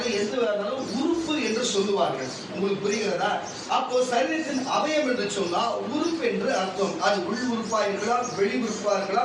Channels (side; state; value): both; identical; correlation 1.00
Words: எந்த உறுப்பு என்று சொல்லுவார்கள். உங்களுக்கு புரிகிறதா? அப்போ சரீரத்தின் அவயம் என்று சொன்னா உறுப்பு என்று அர்த்தம். அது உள் உறுப்பா இருக்கலாம், வெளி உறுப்பா